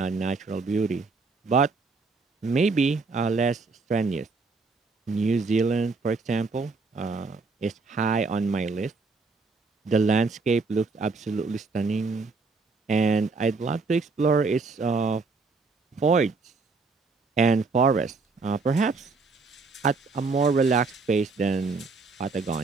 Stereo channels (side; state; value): left; quieter; 4.1 dB